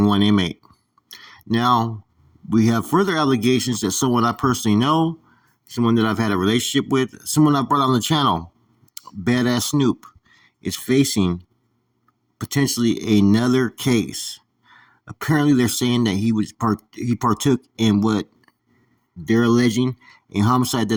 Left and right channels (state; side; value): identical; both; correlation 1.00